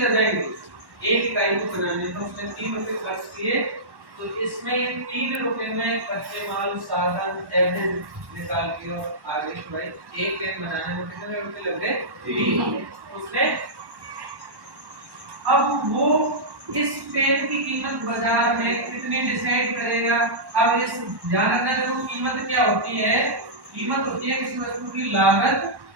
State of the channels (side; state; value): left; late; 1.1 ms